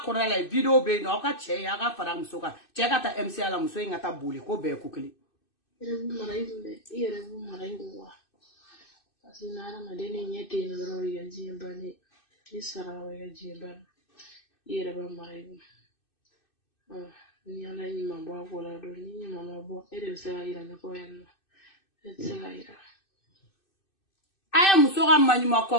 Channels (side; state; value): right; late; 2.6 ms